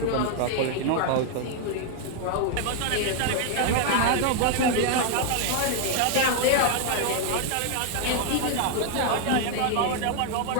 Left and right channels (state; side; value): different; both; correlation 0.00